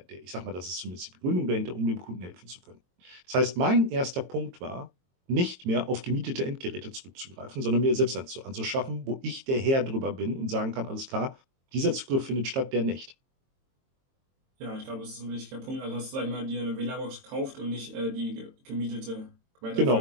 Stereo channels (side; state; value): left; late; 22 ms